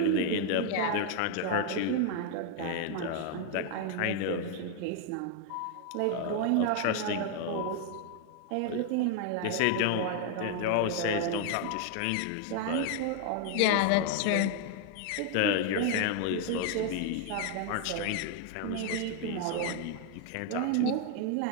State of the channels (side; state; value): both; different; correlation 0.00